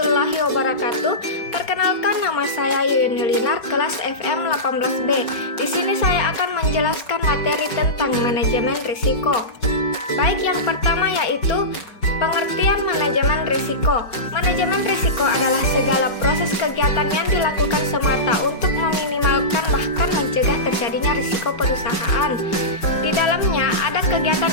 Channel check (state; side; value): late; right; 5.4 ms